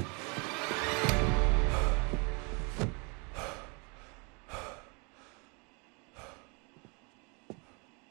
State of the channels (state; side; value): quieter; left; 32.5 dB